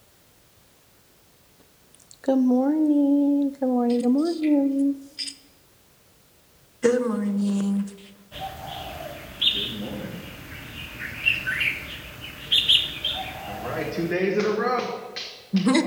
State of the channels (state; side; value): identical; both; correlation 1.00